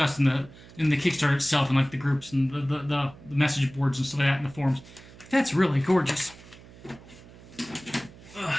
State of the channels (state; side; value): noise; right; hum, 20 dB below the sound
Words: in the Kickstarter itself, and like the groups and the message boards and stuff like that in the forums. That's really gorgeous.